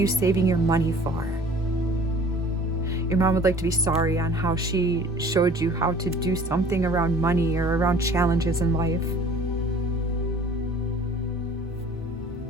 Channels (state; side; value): normal; both; correlation 0.48